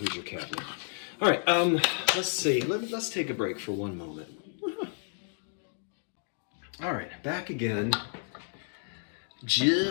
cabinet. All right, let's see. Let's take a break for one moment. All right, back again,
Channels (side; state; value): right; silent; 57 dB below the other